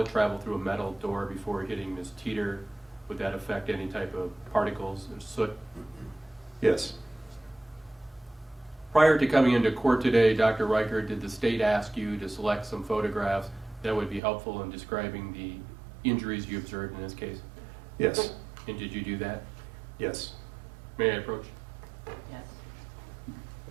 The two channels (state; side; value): drops out; left; at 14.2 s